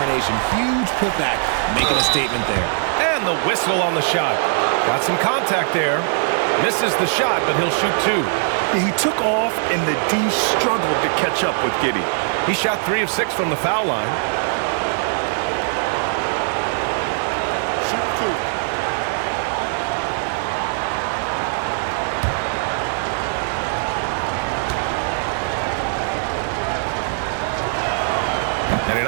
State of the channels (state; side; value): silent; left; 65 dB below the other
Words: Huge putback, making a statement there. And the whistle on the shot. Got some contact there. Misses the shot, but he'll shoot 2. He took off, and the D struggled to catch up with Giddey. He shot 3 of 6 from the foul line. Shoot 2. And he